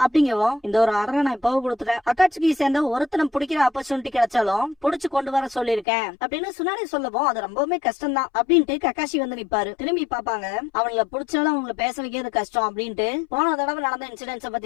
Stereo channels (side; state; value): right; drops out; at 5.9 s